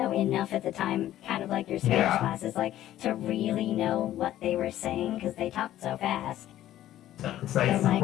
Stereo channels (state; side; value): quieter; right; 13.1 dB